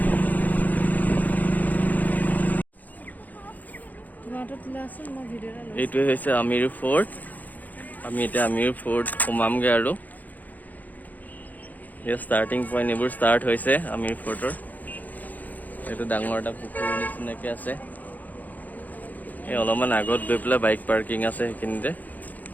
এইটোৱে হৈছে আমিৰ ফৰ্ট। আমি এতিয়া আমিৰ ফৰ্ট সোমামগৈ আৰু ইয়াৰ ষ্টাৰ্টিং পইণ্ট এইবোৰ ষ্টাৰ্ট হৈছে আমিৰ ফৰ্টৰ। এইটো ডাঙৰ এটা পুখুৰীৰ নিচিনাকৈ আছে। এই অলপমান আগত গৈ পেলাই বাইক পাৰ্কিং আছে সেইখিনিতে।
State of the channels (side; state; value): right; late; 0.082 ms